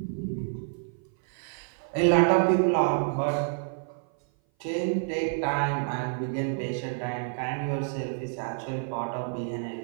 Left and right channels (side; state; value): left; silent; 56 dB below the other